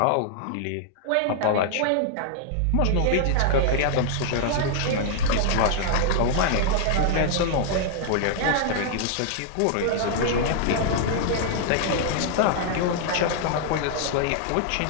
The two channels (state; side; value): different; both; correlation -0.01